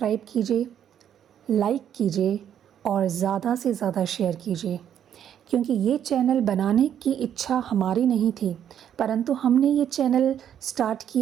कीजिए, लाइक कीजिए और ज़्यादा से ज़्यादा शेयर कीजिए, क्योंकि ये चैनल बनाने की इच्छा हमारी नहीं थी, परंतु हमने ये चैनल स्टार्ट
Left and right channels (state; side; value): quieter; left; 9.6 dB